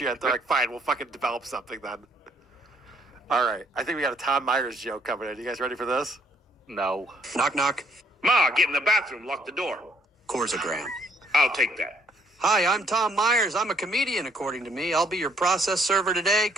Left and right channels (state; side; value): normal; both; correlation 0.66